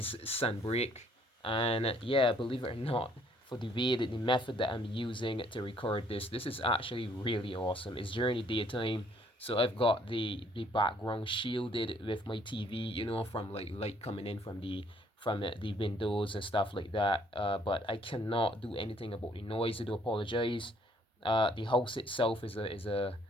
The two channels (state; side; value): normal; both; correlation 0.64